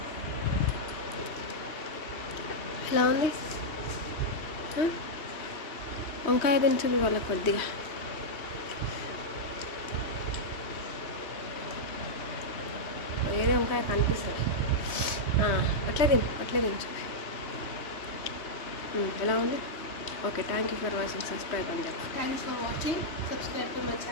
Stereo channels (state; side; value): late; right; 3.1 ms